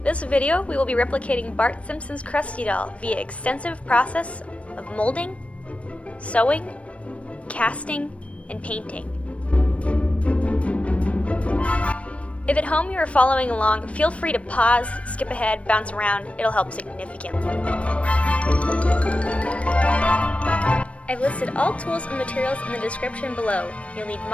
This video we will be replicating Bart Simpson's Krusty doll via extensive process of molding, sewing, casting, and painting. If at home you are following along, feel free to pause, skip ahead, bounce around, it'll help significantly. I've listed all tools and materials in the description below. You'll need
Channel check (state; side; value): late; right; 0.063 ms